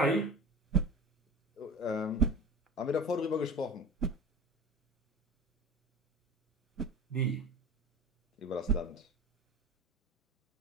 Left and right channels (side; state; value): both; normal; correlation 0.35